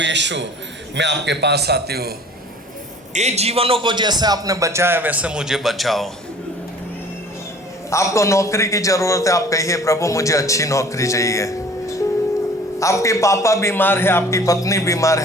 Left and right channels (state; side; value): normal; both; correlation 0.49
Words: यीशु, मैं आपके पास आती हूँ। ये जीवनों को जैसे आपने बचाया वैसे मुझे बचाओ। आपको नौकरी की जरूरत है, आप कहिए, प्रभु मुझे अच्छी नौकरी चाहिए। आपके पापा बीमार है, आपकी पत्नी बीमार